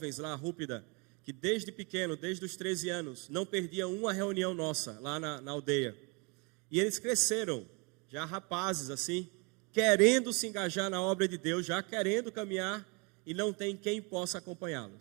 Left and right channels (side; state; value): left; quieter; 31.3 dB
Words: lá, Rúpida, que desde pequeno, desde os 13 anos, não perdiam uma reunião nossa lá na aldeia. E eles cresceram, já rapazes assim, querendo se engajar na obra de Deus, já querendo caminhar, e não tem quem possa